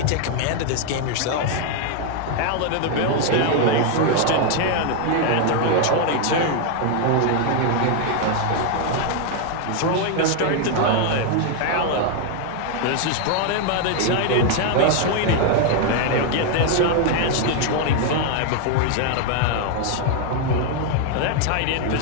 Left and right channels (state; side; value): different; both; correlation 0.00